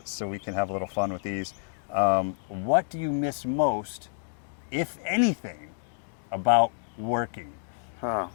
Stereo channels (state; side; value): silent; right; digital silence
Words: we can have a little fun with these. What do you miss most, if anything, about working?